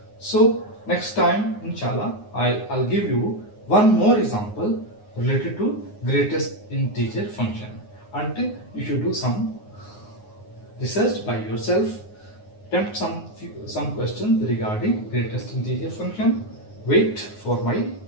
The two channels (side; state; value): right; late; 9.6 ms